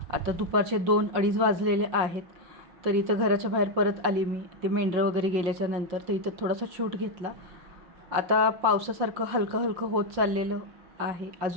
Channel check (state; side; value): late; left; 5.7 ms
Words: आता दुपारचे 2-2:30 वाजलेले आहेत. तर इथं घराच्या बाहेर परत आली मी, ते मेंढरं वगैरे गेल्याच्या नंतर. तर इथं थोडासा शूट घेतला. आता पावसासारखं हलकं हलकं होत चाललेलं आहे,